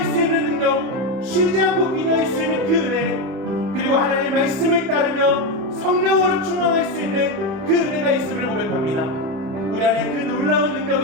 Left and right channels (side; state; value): left; late; 31 ms